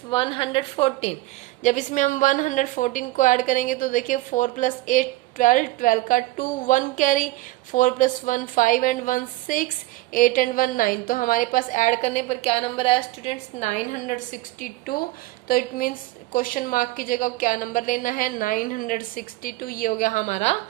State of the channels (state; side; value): quieter; left; 18.2 dB